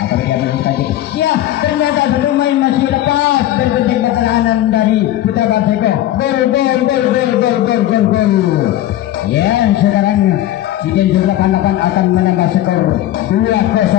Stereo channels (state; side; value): quieter; right; 13.5 dB